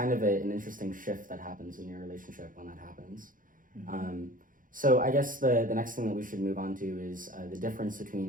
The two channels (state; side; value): late; left; 0.39 ms